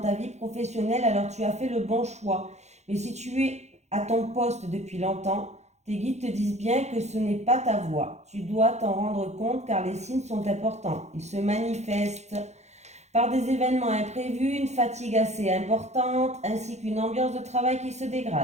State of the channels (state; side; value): late; left; 0.33 ms